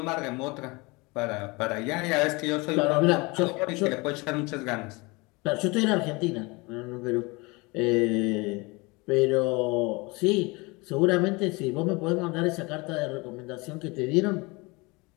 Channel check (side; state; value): right; quieter; 25.8 dB